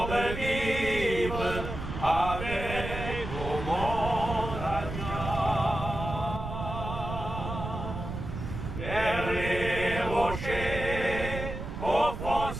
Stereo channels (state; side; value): noise; right; rumble, 7 dB below the sound